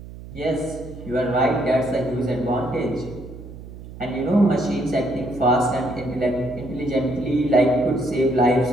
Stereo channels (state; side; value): noise; right; hum, 14 dB below the sound